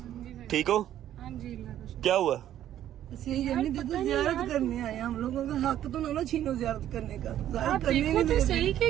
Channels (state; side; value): quieter; left; 11.7 dB